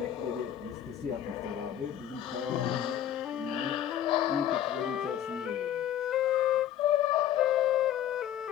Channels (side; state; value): right; quieter; 10.8 dB